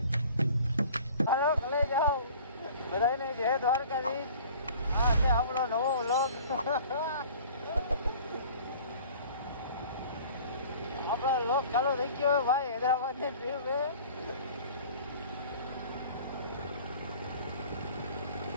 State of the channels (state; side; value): inverted; both; correlation -0.47